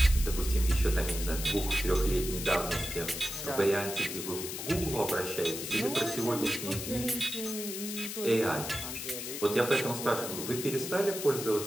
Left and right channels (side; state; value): left; noise; hiss, 6 dB below the sound